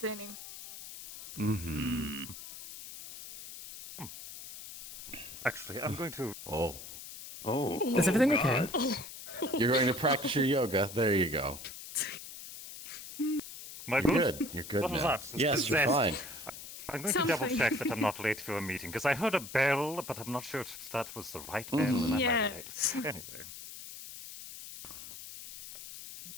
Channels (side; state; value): left; noise; hiss, 12 dB below the sound